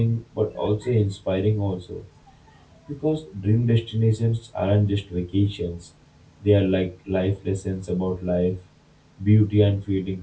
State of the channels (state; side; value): identical; both; correlation 1.00